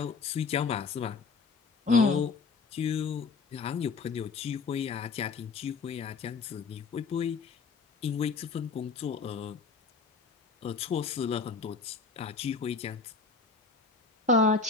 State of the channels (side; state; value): right; quieter; 4.6 dB